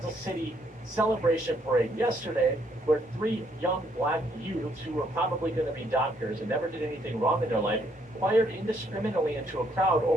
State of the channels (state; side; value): normal; both; correlation 0.70